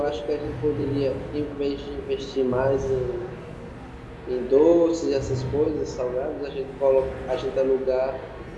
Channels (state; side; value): identical; both; correlation 1.00